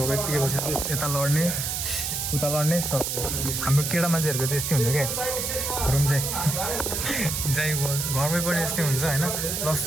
यत्तिकै बसेर चाहिँ यता लड्ने उता लड्ने सब हाम्रो केटा मान्छेहरूको चाहिँ यस्तै हुन्छ क्या रुम चाहिँ जाइ घरमै पनि यस्तै हुन्छ होइन प्लस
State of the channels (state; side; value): noise; right; hiss, 2 dB below the sound